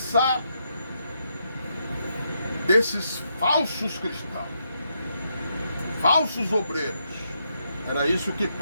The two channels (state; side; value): inverted; both; correlation -0.79